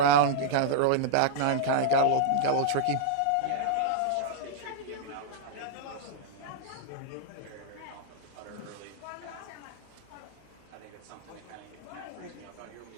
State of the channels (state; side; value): different; both; correlation -0.01